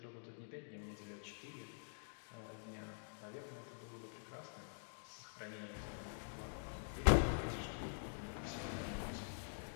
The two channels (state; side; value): silent; right; digital silence